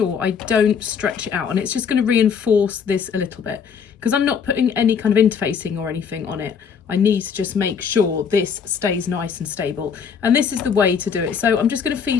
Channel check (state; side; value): quieter; right; 6.7 dB